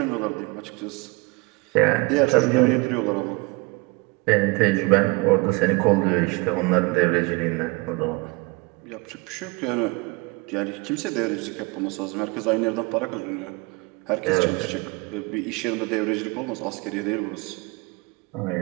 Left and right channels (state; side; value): quieter; left; 26.7 dB